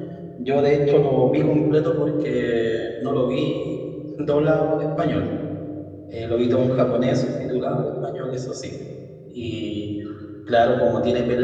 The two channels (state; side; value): identical; both; correlation 1.00